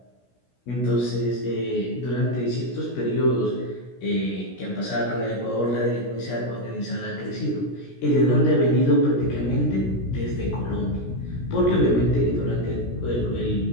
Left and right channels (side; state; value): right; late; 16 ms